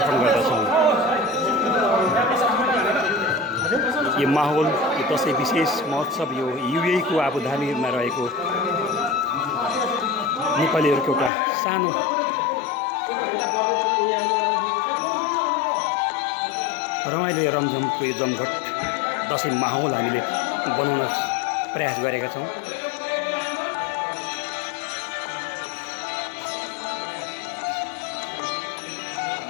गर्दछौँ। यो माहौल, यो दसैँ विशेष महोत्सव यो युएईको आबुधाबीमा रहेको नेपालीहरूको एउटा सानो रमाइलो रमझमको यो जमघट दसैँ माहौल हामीले बनाउन प्रयास गरेका छौँ।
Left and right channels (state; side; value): drops out; right; at 11.3 s